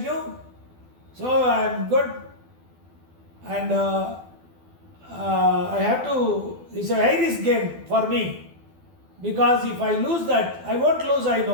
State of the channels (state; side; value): late; left; 12 ms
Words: knew. So I'm good. And I have to, it's a high risk game for me. Because if I lose that, I won't lose, I